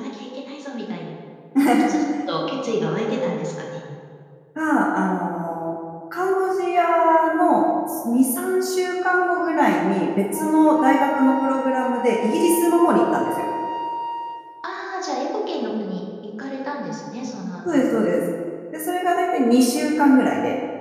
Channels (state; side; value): identical; both; correlation 1.00